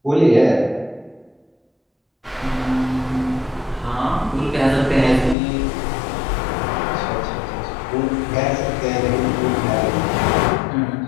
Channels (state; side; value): drops out; right; at 5.4 s